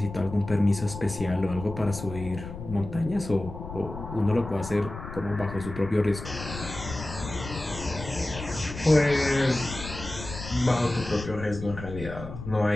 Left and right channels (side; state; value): left; noise; rumble, 10 dB below the sound